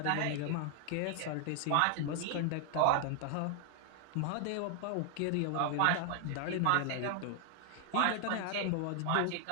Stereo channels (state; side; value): different; both; correlation 0.00